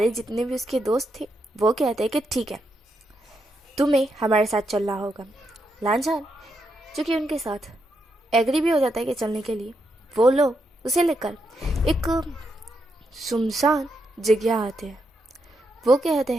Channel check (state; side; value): normal; both; correlation 0.82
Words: जितने भी उसके दोस्त थे वो कहते हैं कि ठीक है, तुम्हें हमारे साथ चलना होगा। लांझान जो कि उनके साथ एग्री भी हो जाता है कि चलने के लिए, वो लोग उसे लेकर एक सुनसान जगह आते हैं। वो कहते